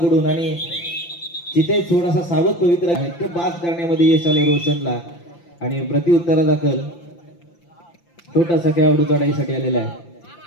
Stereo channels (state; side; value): late; right; 5.8 ms